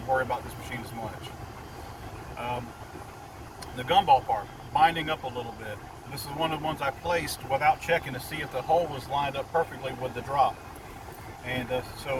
about this machine as much. The gumball part, binding up a little bit. This is one of the ones I placed without checking to see if the hole was lined up perfectly with the drop. And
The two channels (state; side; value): identical; both; correlation 1.00